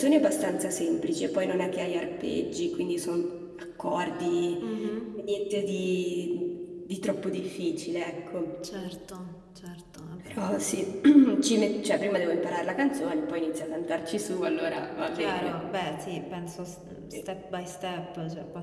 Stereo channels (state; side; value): identical; both; correlation 1.00